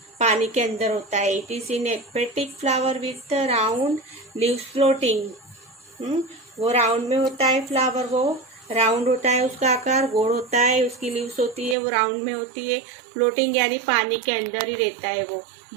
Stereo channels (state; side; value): drops out; left; at 11.8 s